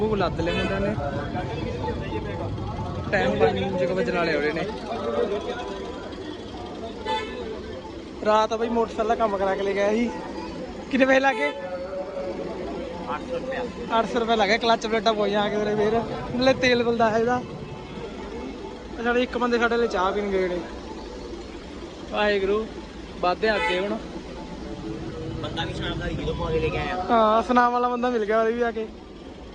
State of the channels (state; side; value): identical; both; correlation 1.00